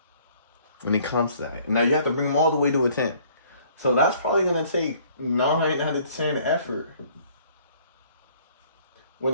when it comes to that. Now you have to bring them all the way to a 10. So that's probably going to take 9 out of 10 effort. When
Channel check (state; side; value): inverted; both; correlation -0.58